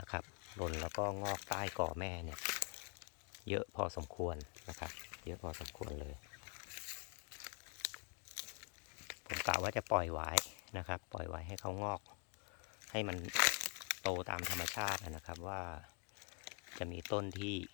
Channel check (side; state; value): right; quieter; 38.0 dB